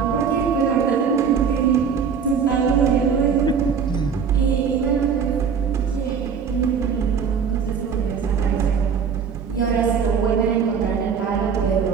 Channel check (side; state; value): left; quieter; 6.6 dB